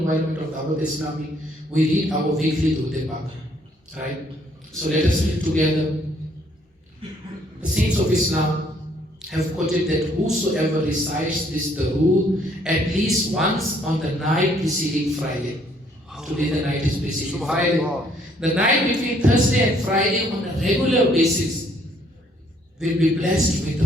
of Dawat Islami, we read our weekly Durud Pak, right? So let us read together. The saints of Islam have quoted that whosoever recites this Durud at least once on the night preceding Friday. Today the night is preceding Friday. The night between Thursday and Friday on a regular basis will be blessed with the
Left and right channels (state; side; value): normal; both; correlation 0.65